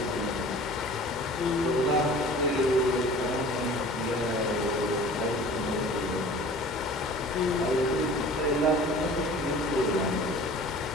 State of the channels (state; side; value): normal; both; correlation 0.44